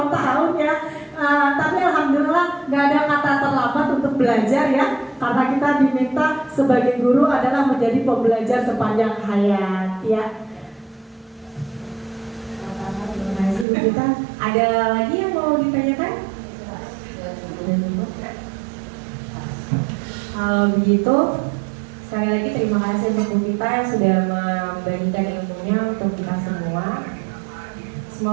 ya. Tapi alhamdulillah nggak ada kata terlambat untuk belajar ya. Karena kita diminta sebagai guru adalah menjadi pembelajar sepanjang hayat ya. Kita ada lagi yang mau ditanyakan? Kalau begitu, sekali lagi terima kasih untuk Bu Vita yang sudah membagikan ilmunya untuk kita semua.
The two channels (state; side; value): drops out; left; at 13.7 s